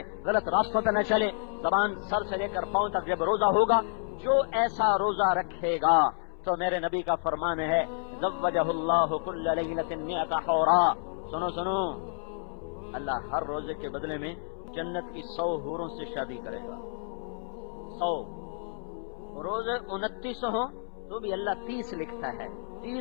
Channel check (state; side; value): silent; right; 58 dB below the other